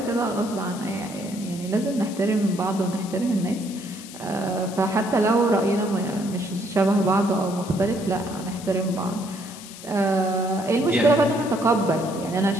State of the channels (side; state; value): left; noise; hiss, 15 dB below the sound